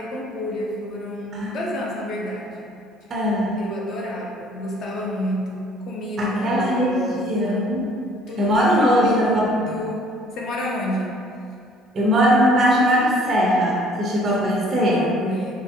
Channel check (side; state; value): both; normal; correlation 0.57